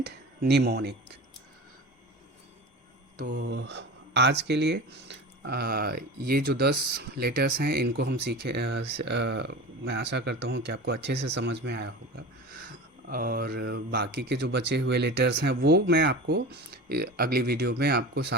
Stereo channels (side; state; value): both; normal; correlation 0.32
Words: निमोनिक। तो आज के लिए ये जो 10 लेटर्स हैं इनको हम सीखे। मैं आशा करता हूँ कि आपको अच्छे से समझ में आया होगा, और बाकी के जो बचे हुए लेटर्स हैं वो मैं आपको अगली वीडियो में आपको